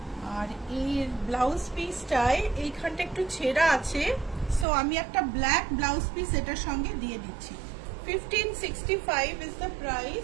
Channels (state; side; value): drops out; left; at 4.7 s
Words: আর এর ব্লাউজ পিসটায় এইখানটা একটু ছেঁড়া আছে, সো আমি একটা ব্ল্যাক ব্লাউজ পিস এটার সঙ্গে দিয়ে দিচ্ছি। 1565 ইজ দ্য